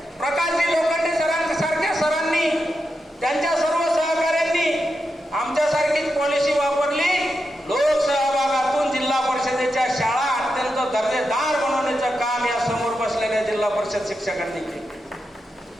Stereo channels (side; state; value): both; normal; correlation 0.87